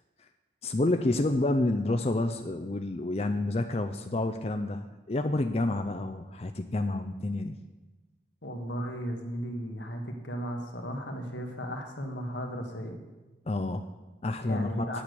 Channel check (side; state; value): both; normal; correlation 0.74